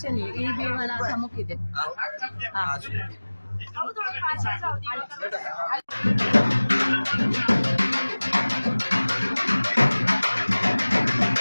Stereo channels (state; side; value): inverted; both; correlation -1.00